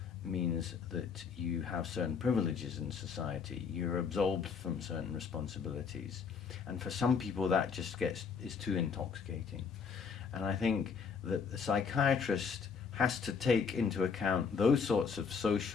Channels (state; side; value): quieter; right; 5.9 dB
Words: means that you have certain privileges in society. You're absolved from certain responsibilities. And for some people that just is too intoxicating. And I think that the psychiatrist has to take into account those sorts of